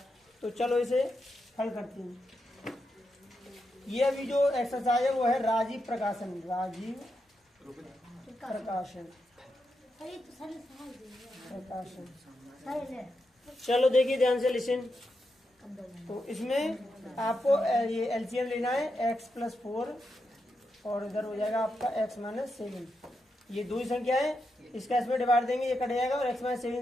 तो चलो इसे हल करते हैं। ये अभी जो एक्सरसाइज है वो है राजीव प्रकाशन, राजीव प्रकाशन। चलो देखिए ध्यान से, लिसन। तो इसमें आपको ये एलसीएम लेना है, x+4 और इधर हो जाएगा आपका x-7। ये दो ही संख्या है, इसका इसमें डिवाइड देंगे, ये कट जाएगा और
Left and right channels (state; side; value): normal; both; correlation 0.85